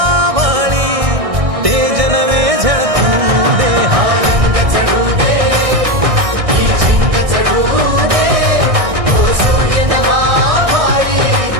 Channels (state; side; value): late; left; 1.6 ms